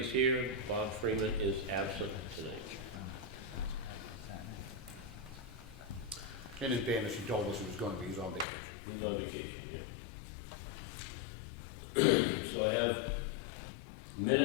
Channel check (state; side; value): drops out; right; at 8.5 s